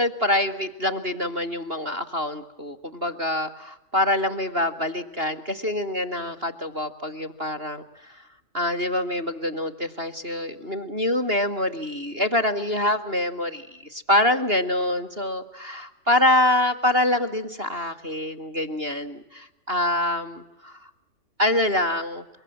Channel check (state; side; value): late; left; 2.8 ms